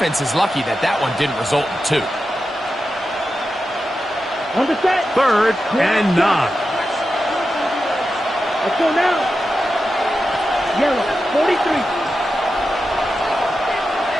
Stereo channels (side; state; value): both; normal; correlation 0.90